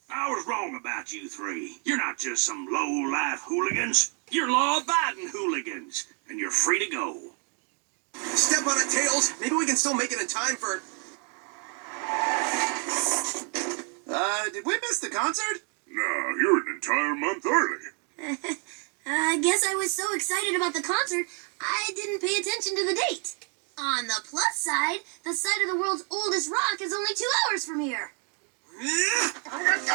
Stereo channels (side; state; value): left; quieter; 38.2 dB